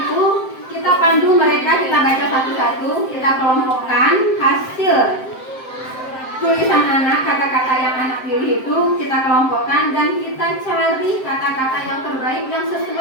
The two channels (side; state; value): right; late; 7.7 ms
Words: kita pandu mereka, kita baca satu-satu, kita kelompokkan hasil tulisan anak, kata-kata yang anak pilih itu kita kelompokkan dan kita cari kata-kata yang terbaik yang